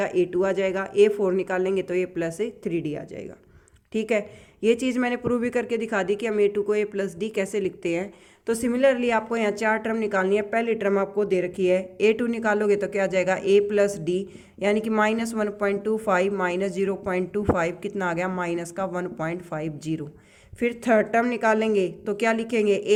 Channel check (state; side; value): identical; both; correlation 1.00